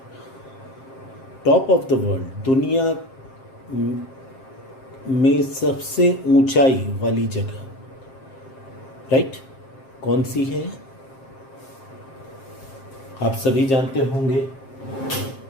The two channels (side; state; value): right; late; 7.5 ms